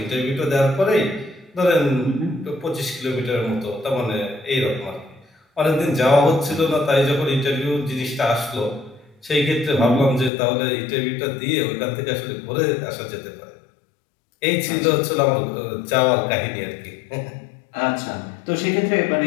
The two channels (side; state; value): right; drops out; at 10.3 s